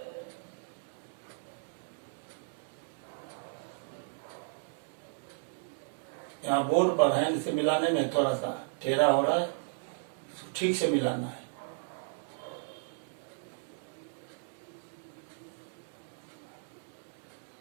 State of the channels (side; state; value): left; silent; digital silence